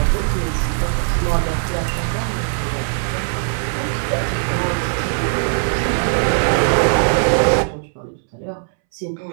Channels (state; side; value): silent; left; 66 dB below the other